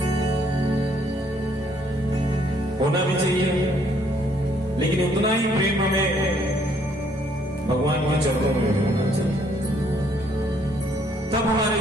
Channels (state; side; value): normal; both; correlation 0.66